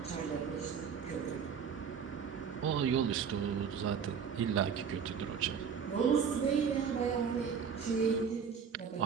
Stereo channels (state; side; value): quieter; left; 6.9 dB